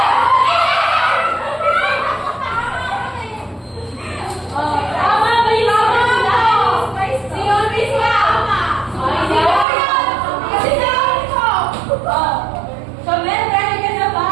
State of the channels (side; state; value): left; drops out; at 9.7 s